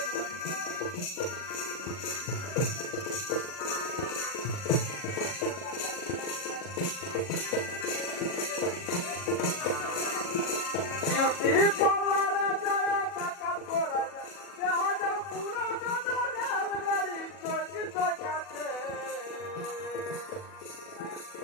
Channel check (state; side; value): late; right; 40 ms